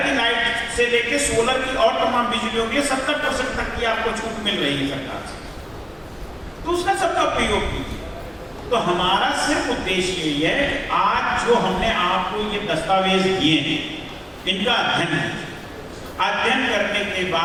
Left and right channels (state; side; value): identical; both; correlation 1.00